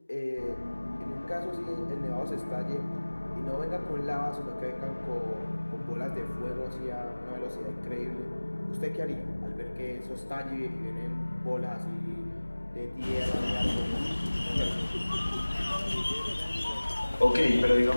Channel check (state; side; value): inverted; both; correlation -1.00